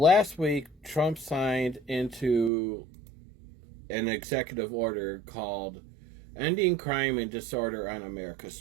week, Trump signed into an executive order called Ending Crime and Disorder on America's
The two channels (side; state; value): left; drops out; at 2.5 s